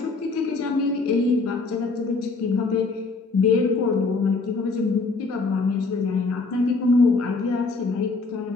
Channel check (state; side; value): quieter; right; 3.9 dB